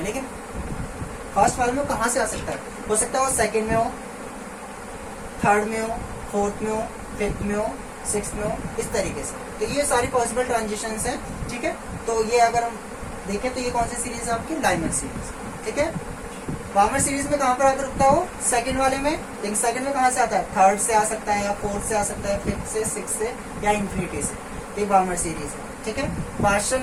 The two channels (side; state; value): both; identical; correlation 1.00